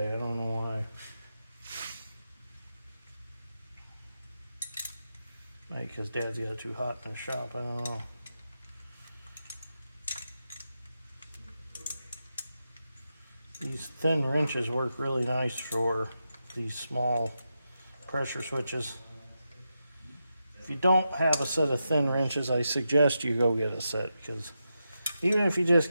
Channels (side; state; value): both; inverted; correlation -0.88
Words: I don't know why. Maybe because Dad's got it too hot in the shop. I don't know. These thin wrenches work really nice for these small pressure switches. If you don't have a set of thin wrenches, I suggest you go get a set, because even if you just